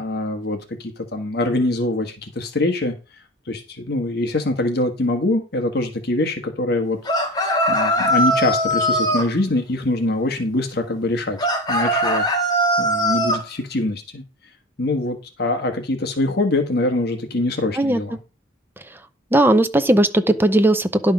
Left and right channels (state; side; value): normal; both; correlation 0.41